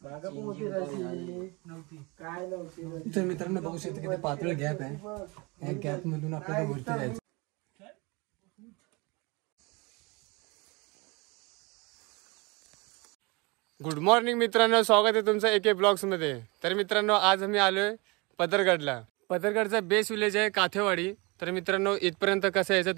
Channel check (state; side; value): quieter; left; 27.0 dB